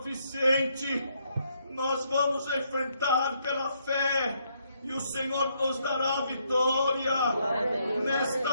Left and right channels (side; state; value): both; inverted; correlation -0.73